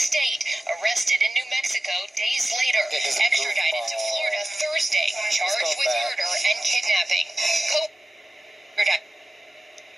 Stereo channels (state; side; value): normal; both; correlation 0.94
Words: state, arrested in New Mexico days later, extradited to Florida Thursday, charged with murder and kidnapping.